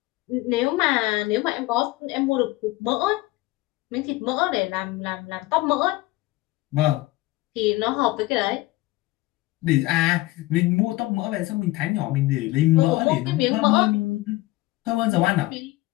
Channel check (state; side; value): quieter; right; 19.2 dB